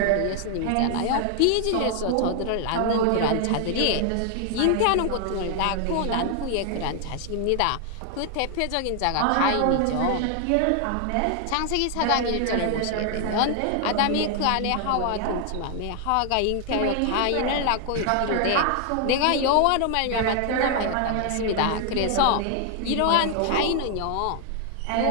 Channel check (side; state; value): both; different; correlation 0.00